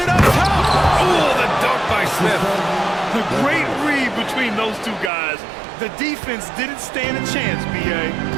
up top. Ooh, the dunk by Smith. The great read between those two guys. The defense didn't stand a chance, B.A.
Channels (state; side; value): drops out; left; at 5.1 s